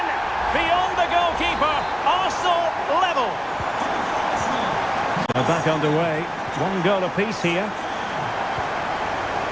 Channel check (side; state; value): both; identical; correlation 1.00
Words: Beyond the goalkeeper. Arsenal level. They're back underway. 1 goal apiece here.